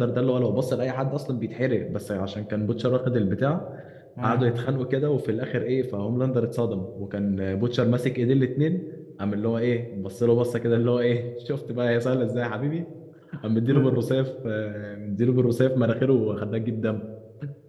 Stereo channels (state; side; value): identical; both; correlation 1.00